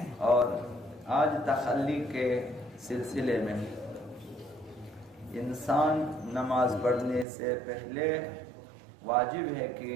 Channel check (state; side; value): drops out; left; at 7.2 s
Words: اور آج تخلی کے سلسلے میں انسان نماز پڑھنے سے پہلے واجب ہے کہ